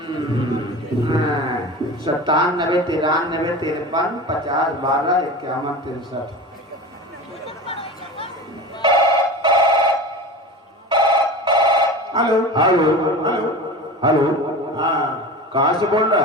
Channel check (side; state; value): both; normal; correlation 0.32